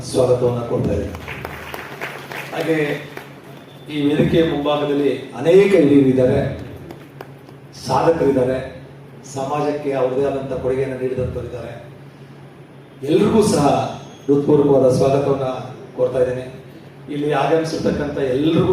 ಸ್ವಾಗತವನ್ನು ಕೊಡ್ತಾ ಇದ್ದಾರೆ. ಹಾಗೆ ಈ ವೇದಿಕೆಯ ಮುಂಭಾಗದಲ್ಲಿ ಅನೇಕ ಹಿರಿಯರಿದ್ದಾರೆ, ಸಾಧಕರಿದ್ದಾರೆ, ಸಮಾಜಕ್ಕೆ ಅವರದೇ ಆದಂಥ ಕೊಡುಗೆಯನ್ನು ನೀಡಿದಂಥವರಿದ್ದಾರೆ. ಎಲ್ರಿಗೂ ಸಹ ಹೃತ್ಪೂರ್ವಕವಾದ ಸ್ವಾಗತವನ್ನು ಕೊಡ್ತಾ ಇದ್ದೇನೆ. ಇಲ್ಲಿ ಆಗಮಿಸಿರ್ತಕ್ಕಂಥ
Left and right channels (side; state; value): both; identical; correlation 1.00